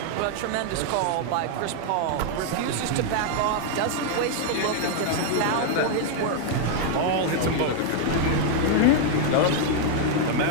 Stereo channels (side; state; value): both; different; correlation 0.00